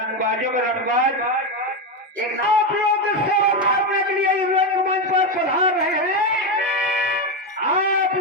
में रंगबाज एक आप लोग सेवा करने के लिए इस रंगमंच पर पधार रहे हैं। आप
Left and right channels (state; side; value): normal; both; correlation 0.11